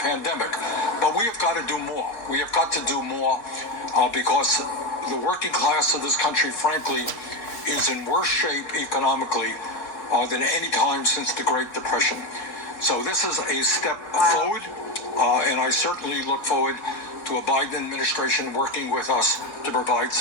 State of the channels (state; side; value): late; right; 4.2 ms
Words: But we have got to do more. We have got to do more because the working class of this country, frankly, is in worse shape economically than any time since the Great Depression. So this is a step forward, and I certainly look forward to a Biden administration working with us to provide